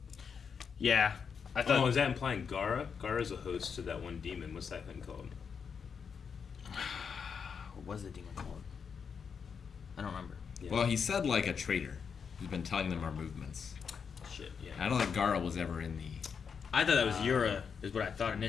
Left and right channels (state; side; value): quieter; right; 6.4 dB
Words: Yeah. I thought. Oh, is that implying Gaara? Gaara's a host to that one demon. What's that thing called? What was the demon called? I don't remember. Yeah. Well, he said like a traitor who's been telling them our movements. Shit, yeah. I don't think Gaara was ever in the. I thought that was Yura, is what I thought